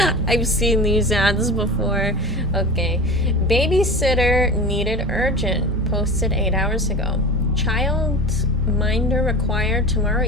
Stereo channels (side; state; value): right; noise; rumble, 14 dB below the sound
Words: I've seen these ads before. Okay. Babysitter needed urgent. Posted 8 hours ago. Child minder required tomorrow